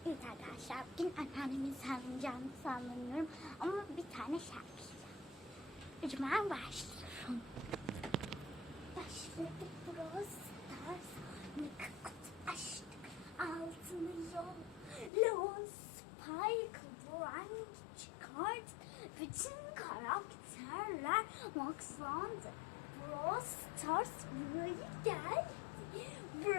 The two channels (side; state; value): right; drops out; at 15.1 s